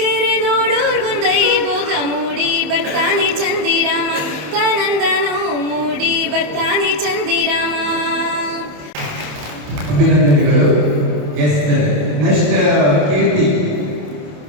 ಕೆರೆ ನೋಡೋರ್ಗೊಂದೈ ಭೋಗ ಮೂಡಿ ಬರ್ತಾನೆ ಚಂದಿರಾಮ ತಾನಂದನೋ ಮೂಡಿ ಬರ್ತಾನೆ ಚಂದಿರಾಮ ಅಭಿನಂದನೆಗಳು. ನೆಕ್ಸ್ಟ್ ಕೀರ್ತಿ.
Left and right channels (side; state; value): left; late; 28 ms